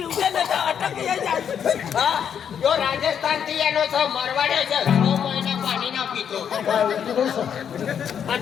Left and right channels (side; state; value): right; quieter; 8.2 dB